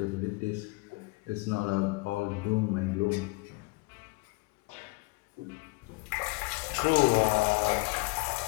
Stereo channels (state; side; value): quieter; right; 27.4 dB